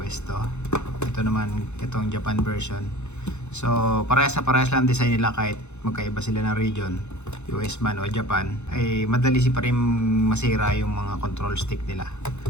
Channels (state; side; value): late; right; 0.82 ms